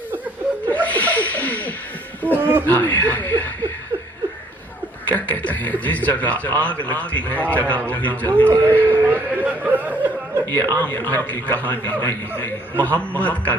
کیا کہتے ہیں جس جگہ آگ لگتی ہے جگہ وہی جلتی ہے یہ عام گھر کی کہانی نہیں محمد کا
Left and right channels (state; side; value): normal; both; correlation 0.62